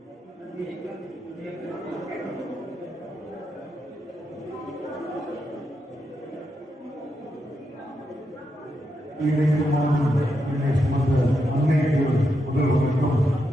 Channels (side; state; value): both; normal; correlation 0.83